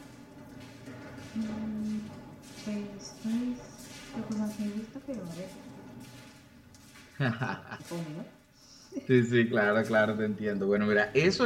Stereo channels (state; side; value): identical; both; correlation 1.00